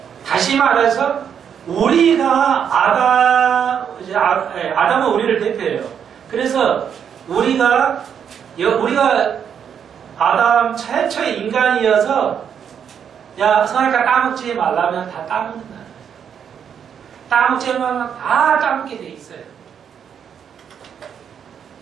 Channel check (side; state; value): left; quieter; 8.0 dB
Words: 다시 말해서 우리가 아담은 우리를 대표해요. 그래서 우리가 아담 최초의 인간이어서 야, 선악과 따먹지 말라면 다 따먹는다. 따먹지 말라면 다 따먹게 돼 있어요.